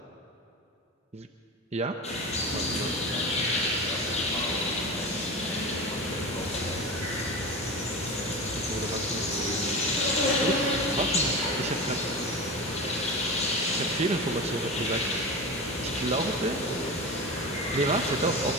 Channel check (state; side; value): normal; both; correlation 0.27